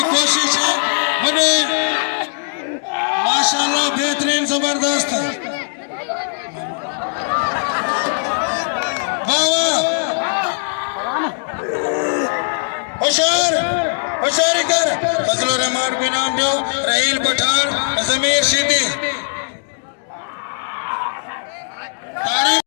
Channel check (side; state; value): right; silent; digital silence